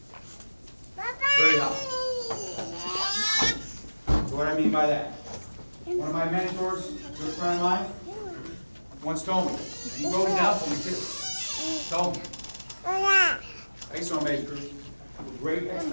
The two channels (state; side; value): inverted; both; correlation -1.00